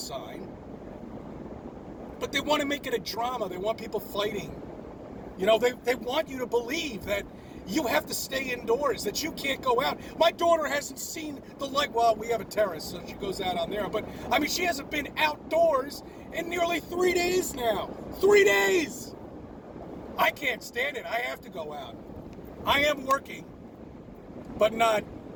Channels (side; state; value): both; identical; correlation 1.00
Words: But they want to make it a drama. They want people fighting. You know, they want you to believe that you have to stay indoors, that you can't go out. My daughter hasn't seen the light. Well, we have a terrace, so she goes out on there. But, I mean, she hasn't been outdoors in nearly 3 days now. 3 days! I can't stand it. I have to go out. I am working, but not